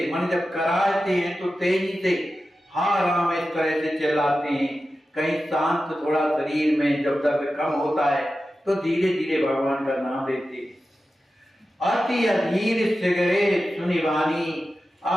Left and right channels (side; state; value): both; normal; correlation 0.93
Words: मन जब कराते हैं तो तेजी से हा राम इस तरह से चिल्लाते हैं। कहीं शांत थोड़ा शरीर में जब दर्द कम होता है तो धीरे धीरे भगवान का नाम लेते हैं। अति अधीर सिगरे सुनि वाणी,